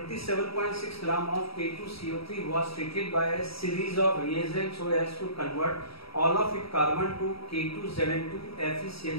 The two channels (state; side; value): late; right; 0.76 ms